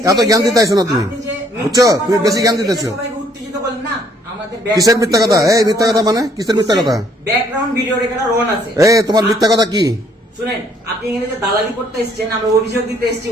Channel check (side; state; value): both; normal; correlation 0.64